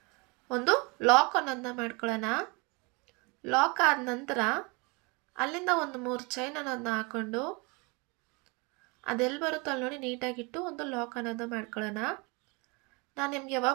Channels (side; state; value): left; quieter; 29.2 dB